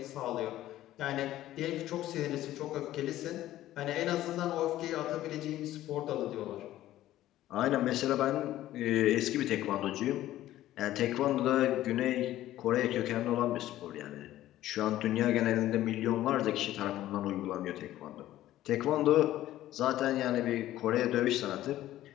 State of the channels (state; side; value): quieter; right; 14.1 dB